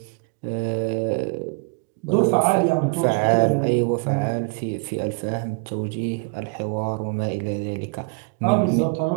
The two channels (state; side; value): quieter; left; 35.1 dB